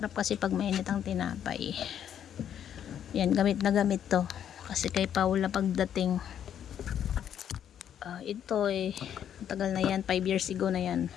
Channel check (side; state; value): right; quieter; 9.5 dB